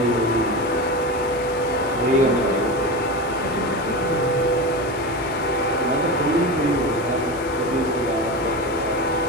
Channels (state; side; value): noise; left; hiss, 18 dB below the sound